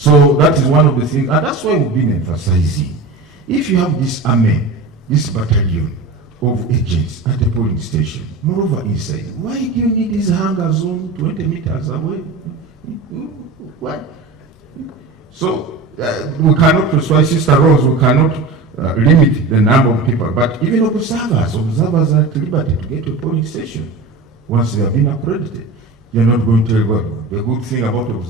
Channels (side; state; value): left; quieter; 3.5 dB